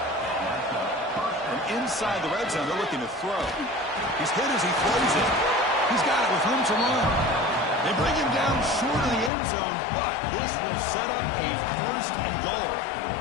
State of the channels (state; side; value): drops out; right; at 9.3 s